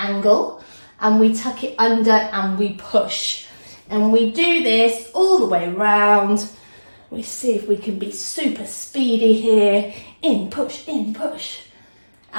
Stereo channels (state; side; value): inverted; both; correlation -1.00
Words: and we tuck it under and we push. And we do this all the way around. We see if we can be super speedy here. In, push, in, push.